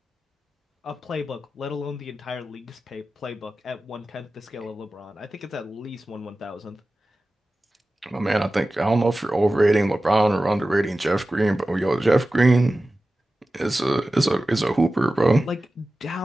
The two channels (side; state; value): both; normal; correlation 0.95